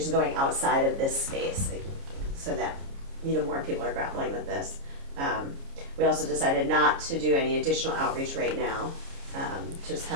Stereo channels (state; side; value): late; left; 29 ms